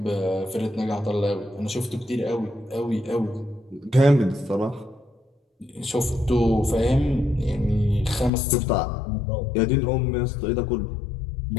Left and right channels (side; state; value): right; drops out; at 8.3 s